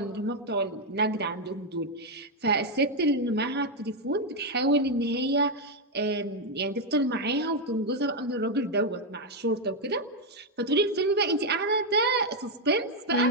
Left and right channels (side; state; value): both; normal; correlation 0.02